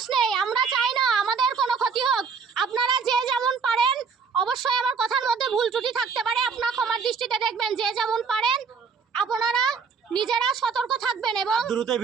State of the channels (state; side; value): quieter; left; 5.6 dB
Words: নেই। আমরা চাই না আমাদের কোনো ক্ষতি হোক। আপনারা যে যেমন পারেন, অবশ্যই আমার কথার মধ্যে ভুল ত্রুটি থাকতে পারে, আপনারা ক্ষমার দৃষ্টিতে দেখবেন। যে যেমন পারেন আপনারা নিজেরা সতর্ক থাকবেন এবং দ্রুত